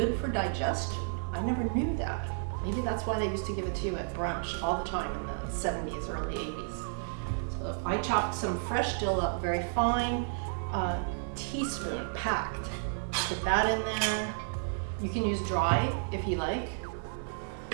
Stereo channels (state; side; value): silent; left; digital silence